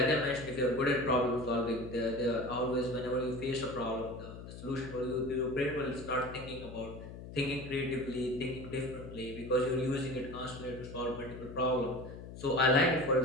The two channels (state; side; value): noise; left; hum, 12 dB below the sound